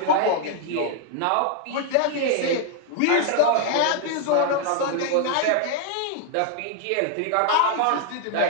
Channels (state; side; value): different; both; correlation 0.00